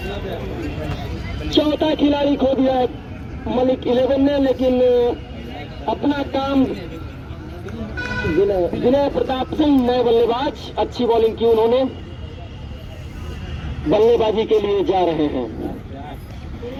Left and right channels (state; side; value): identical; both; correlation 1.00